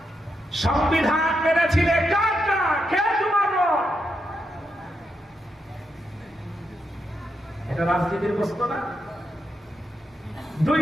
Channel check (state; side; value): normal; both; correlation 0.83